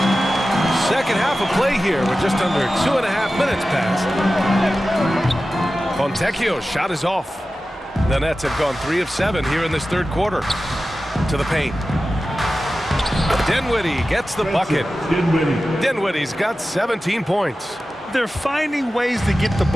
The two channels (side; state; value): both; normal; correlation 0.94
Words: Second half of play here with just under 2.5 minutes passed. Fontecchio's shot is off. The Nets have gone 3 of 7 here in this third quarter. To the paint. Dinwiddie gets the bucket. Dinwiddie's got 17 points. They're finding ways to get the